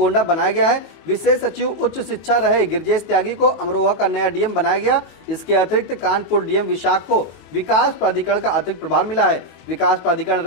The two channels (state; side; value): late; right; 22 ms